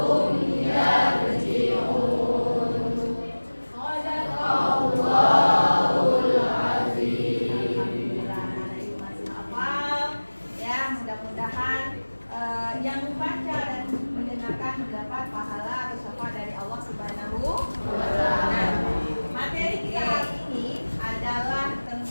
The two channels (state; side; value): inverted; both; correlation -1.00